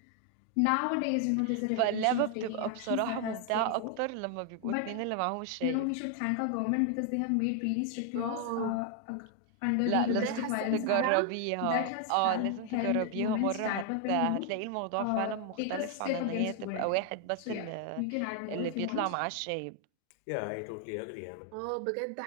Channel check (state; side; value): different; both; correlation 0.00